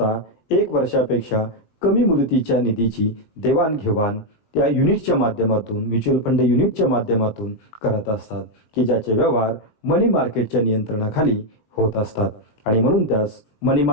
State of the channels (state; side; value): late; right; 19 ms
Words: 1 वर्षापेक्षा कमी मुदतीच्या निधीची देवाणघेवाण त्या युनिटच्या माध्यमातून म्युच्युअल फंड युनिटच्या माध्यमातून करत असतात, की ज्याचे व्यवहार मनी मार्केटच्या नियंत्रणाखाली होत असतात आणि म्हणून त्यास मनी